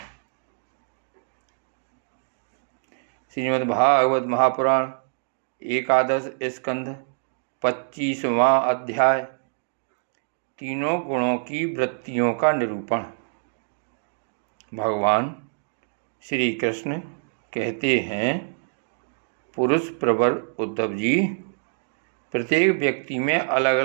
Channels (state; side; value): silent; left; digital silence